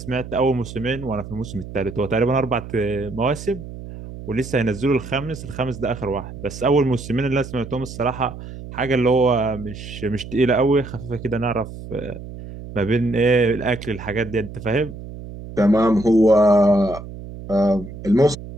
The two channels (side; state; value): right; noise; hum, 12 dB below the sound